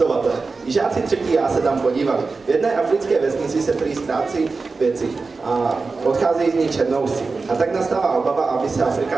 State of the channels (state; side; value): quieter; left; 4.1 dB